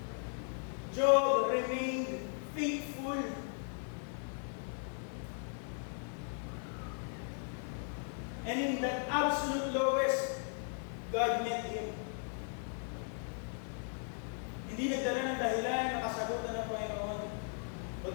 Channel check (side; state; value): right; silent; 53 dB below the other